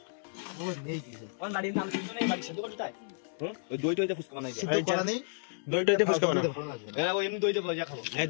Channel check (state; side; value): silent; right; digital silence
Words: দই টইতে ফুচকা বানাই, দই